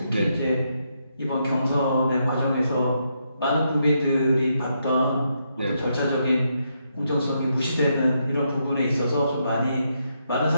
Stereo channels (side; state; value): both; inverted; correlation -0.79